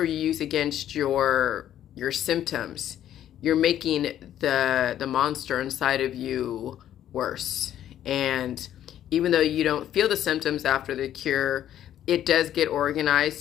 you use against your symptoms, you're making the monster inside of you worse. And even though you don't feel the symptoms after the cure, it does get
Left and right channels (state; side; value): quieter; right; 11.3 dB